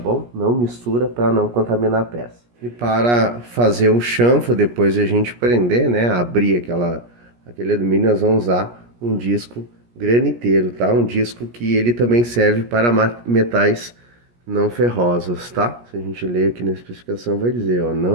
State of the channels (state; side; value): late; left; 17 ms